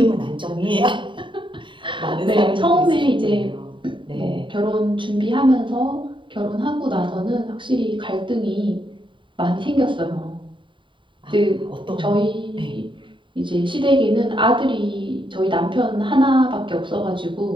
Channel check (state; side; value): late; left; 0.24 ms